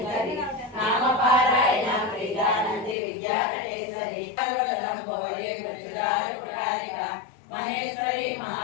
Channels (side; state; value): right; drops out; at 3.0 s